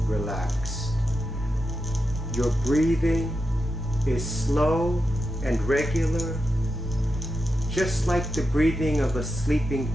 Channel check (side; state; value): both; normal; correlation 0.88